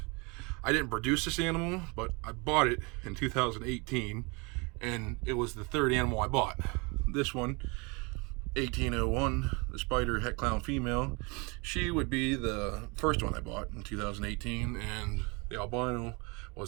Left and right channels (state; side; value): quieter; left; 29.2 dB